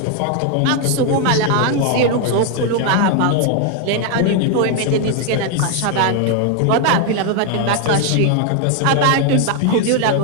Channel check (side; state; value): both; different; correlation 0.01